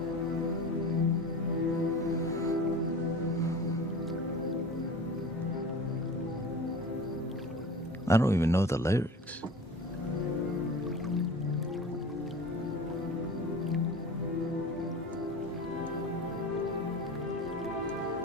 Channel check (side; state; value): both; normal; correlation 0.36